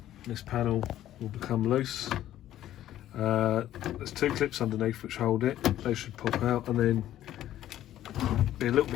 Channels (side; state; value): right; quieter; 12.7 dB